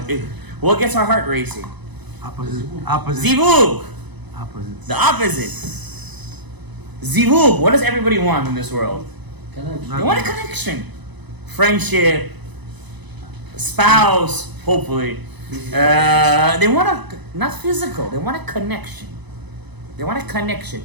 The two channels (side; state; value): left; late; 1.0 ms